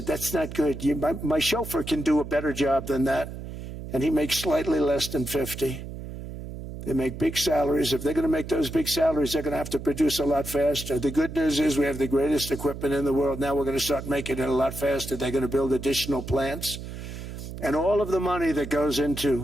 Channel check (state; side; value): noise; right; hum, 10 dB below the sound